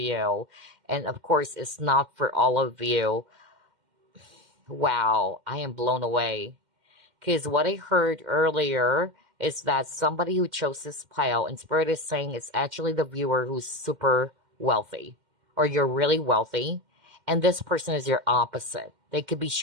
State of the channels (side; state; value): left; late; 2.1 ms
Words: And of course, it's not for all of you. Wow, I am blown away. Because what I heard earlier is that somebody who chose this pile, and Spirit is saying it's actually the viewer who's super wealthy, or you're really wealthy, and this person is your opposite. They could be